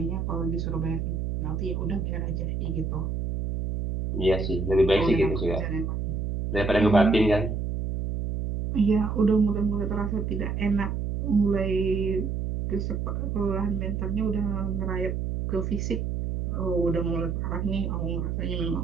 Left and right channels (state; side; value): noise; right; hum, 2 dB below the sound